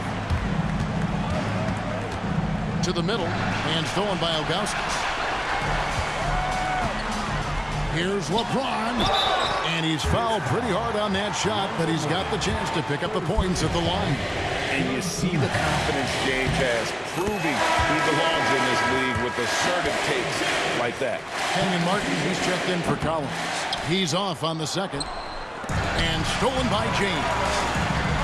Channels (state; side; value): identical; both; correlation 1.00